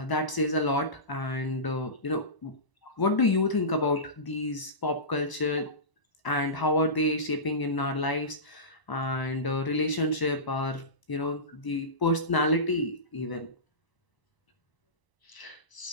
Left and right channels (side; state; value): right; late; 1.0 ms